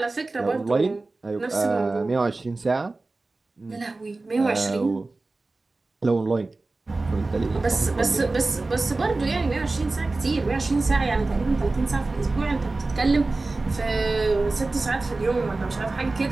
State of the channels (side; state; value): left; quieter; 3.3 dB